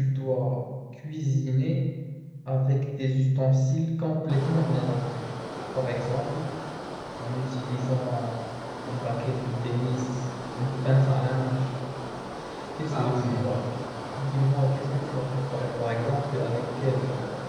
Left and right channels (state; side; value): identical; both; correlation 1.00